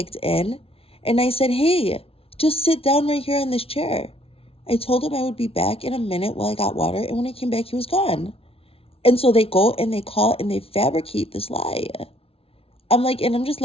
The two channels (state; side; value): late; right; 0.27 ms